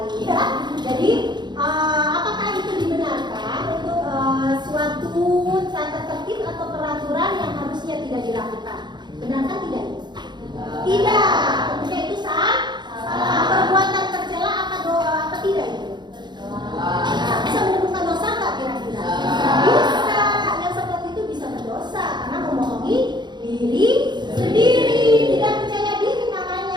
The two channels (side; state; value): left; late; 0.21 ms